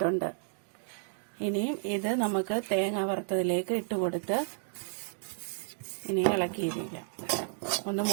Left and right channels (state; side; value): silent; left; digital silence